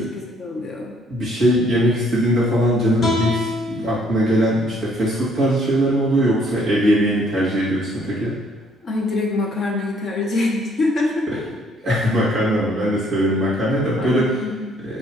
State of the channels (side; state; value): both; normal; correlation 0.64